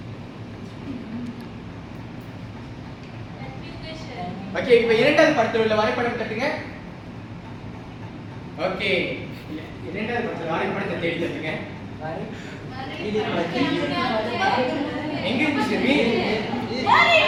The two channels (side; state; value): both; identical; correlation 1.00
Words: ஓகே, இப்ப இரண்டாவது படத்துல உள்ள வரைபடம் தட்டுங்க. ஓகே, இரண்டாவது படத்துல வரைபடத்தை தேடி தட்டுங்க. எங்க இருக்கு ஷெர்வின்?